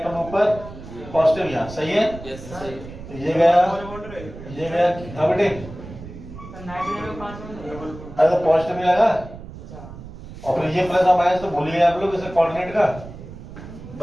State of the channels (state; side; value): noise; right; rumble, 14 dB below the sound